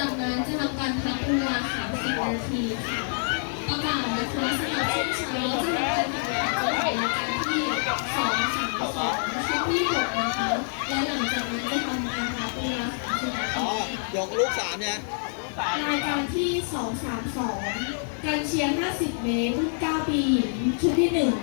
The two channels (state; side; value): silent; right; digital silence